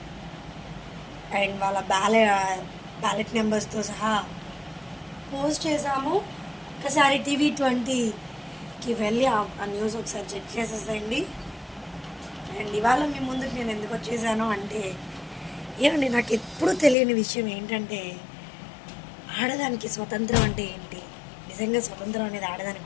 అండ్ వాళ్ళ బ్యాలెట్ నెంబర్స్తో సహా పోస్ట్ చేసాము. ఒకసారి TV20కి వెళ్ళి ఆ న్యూస్ ఒకసారి చెక్ చేసేసేయండి. అండ్ ఇవాళ మీ ముందుకు నేను ఎందుకు వచ్చేసాను అంటే, ఏమండి, నాకు ఎప్పుడూ తెలియని విషయం ఏంటంటే, ఆడదానికి స్వతంత్రం అంటే ఏంటి? నిజంగా స్వతంత్రం అనేది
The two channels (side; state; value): right; drops out; at 16.9 s